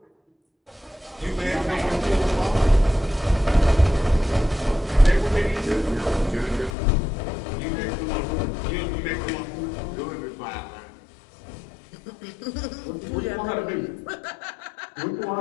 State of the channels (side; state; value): right; drops out; at 6.8 s